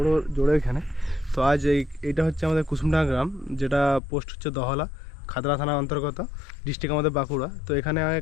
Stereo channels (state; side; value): drops out; right; at 4.0 s